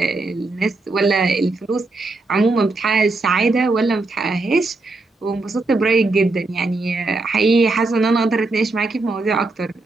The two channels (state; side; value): quieter; left; 3.3 dB